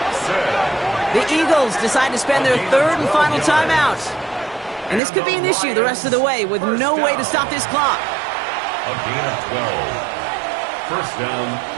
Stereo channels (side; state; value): left; drops out; at 5.0 s